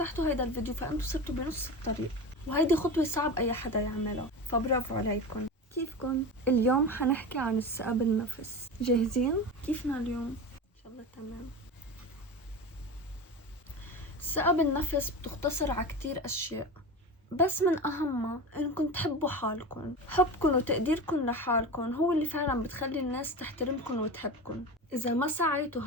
هيدا الفيديو فانتوا صرتوا بنص الطريق، وهيدي خطوة صعب اي حدا يعملها، فبرافو عليكم. كيفكن؟ اليوم حنحكي عن الثقة بالنفس. جاهزين؟ كيفنا اليوم؟ ان شاء الله تمام. الثقة بالنفس بتختصر على كتير اشياء، بس من اهمها انكم تحبوا حالكم. حبكم وتقديركم لحالكم هو اللي فعلا بتخلي الناس تحترمكم وتحبكم. اذا ما سعيتوا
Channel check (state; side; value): normal; both; correlation 0.27